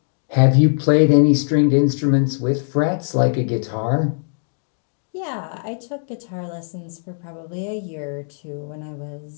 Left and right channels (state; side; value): silent; right; digital silence